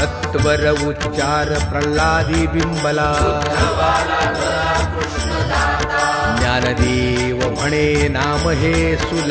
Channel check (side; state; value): both; identical; correlation 1.00